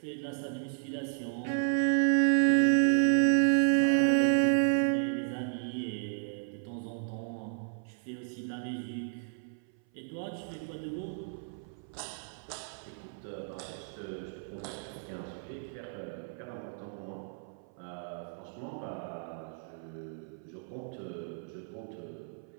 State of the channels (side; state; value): left; silent; 56 dB below the other